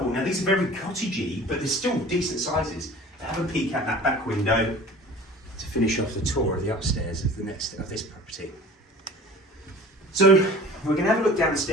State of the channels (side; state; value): both; normal; correlation 0.43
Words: Now these are very cottagey, but they're still decent sizes. Have a peek at that back window to finish off the tour of the upstairs of this property. So we're going to have a look down the